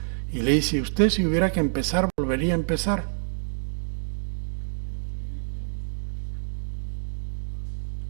y le dice, usted si hubiera que empezar, volvería a empezar.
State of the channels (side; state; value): left; silent; 60 dB below the other